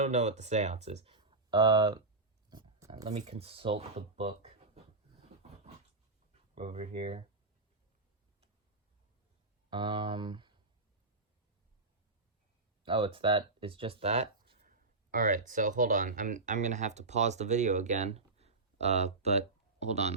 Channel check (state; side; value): quieter; left; 3.5 dB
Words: know what the seance is. Let me consult the book. here. Oh, it's just that? Alright, so hold on. I'm gonna have to pause the video again. But hold on,